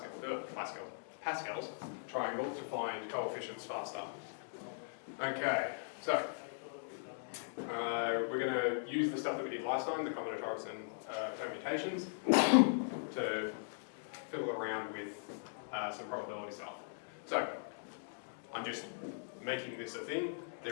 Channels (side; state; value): right; silent; digital silence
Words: triangle to find coefficients faster. Okay. So, we're going to use the stuff that we did last time, the combinatorics and permutations, to fiddle around with some probability stuff. So, I'm just making this a thing.